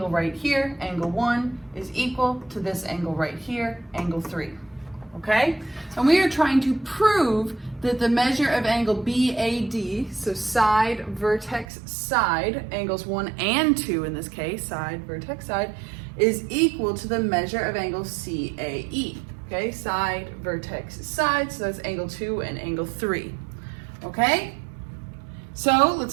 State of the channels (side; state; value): left; drops out; at 11.7 s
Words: right here, angle 1, is equal to this angle right here, angle 3. Okay? And we are trying to prove that the measure of angle BAD, so side, vertex, side, angles 1 and 2 in this case, side, vertex, side, is equal to the measure of angle CAE. Okay, side, vertex, side, so that's angle 2 and angle 3. Okay? So